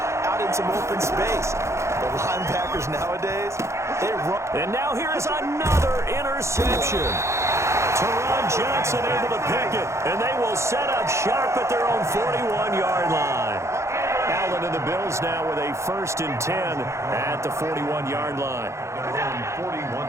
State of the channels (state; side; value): late; left; 0.14 ms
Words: out in some open space. The linebackers nowadays, they run. And now here is another interception. Teron Johnson able to pick it, and they will set up sharp at their own 41-yard line. Allen and the Bills now with a 1st and 10 at the 41-yard line. Their own